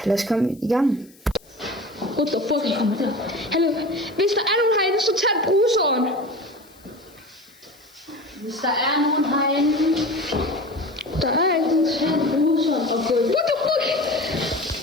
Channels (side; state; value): left; noise; hiss, 27 dB below the sound